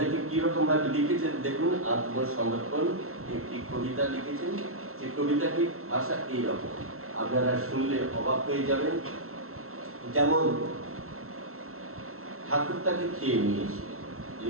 কিরকম ভাবে লিখেছেন দেখুন। আত্মসমর্পণ একটি কবিতা লিখেছেন, যে কবিতাটি ভাষা এইরকম, আপনারা শুনলে অবাক হয়ে যাবেন। যেমন ঠাকুর তাকে খেয়ে নিয়েছিলেন, যে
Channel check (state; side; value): late; left; 0.63 ms